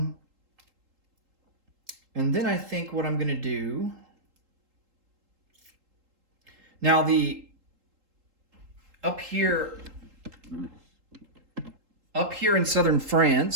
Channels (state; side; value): late; left; 3.8 ms